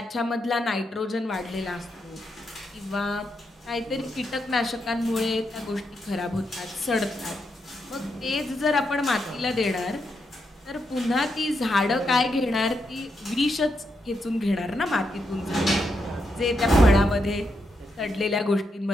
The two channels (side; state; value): both; normal; correlation 0.82